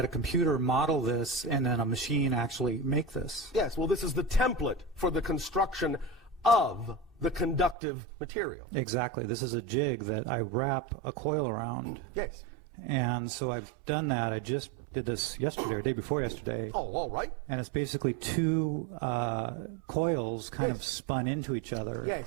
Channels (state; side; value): drops out; left; at 7.8 s